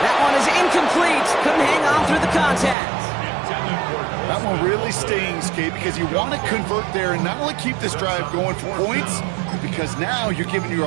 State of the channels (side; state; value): left; drops out; at 2.8 s